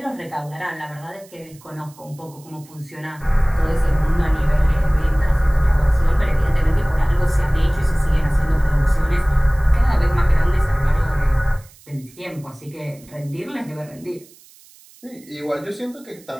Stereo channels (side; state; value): right; noise; hiss, 25 dB below the sound